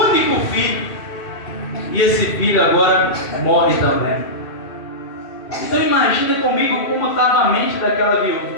único filho. E esse filho agora morre também. Então imagina comigo como estava a mente daquela viúva.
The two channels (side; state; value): right; late; 2.6 ms